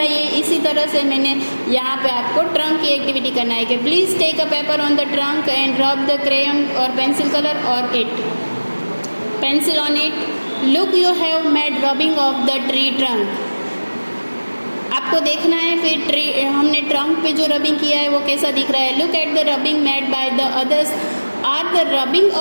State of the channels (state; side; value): inverted; both; correlation -1.00